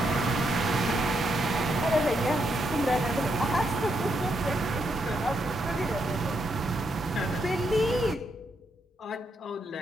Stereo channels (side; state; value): both; normal; correlation 0.79